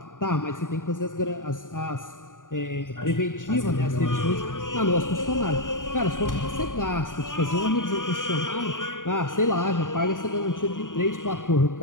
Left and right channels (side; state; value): right; late; 0.88 ms